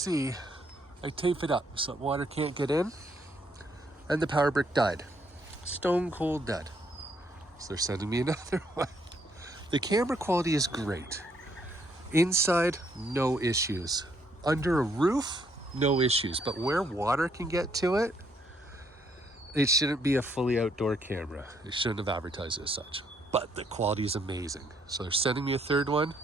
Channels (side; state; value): both; normal; correlation 0.70